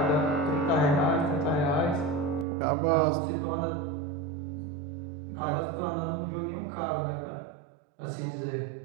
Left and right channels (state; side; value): drops out; left; at 2.5 s